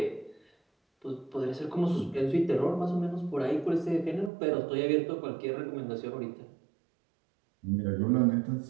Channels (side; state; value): left; drops out; at 4.3 s